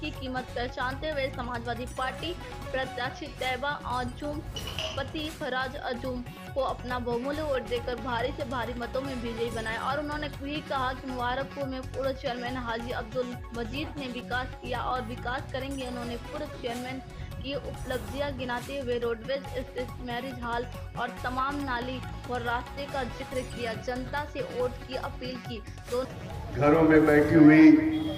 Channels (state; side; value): identical; both; correlation 1.00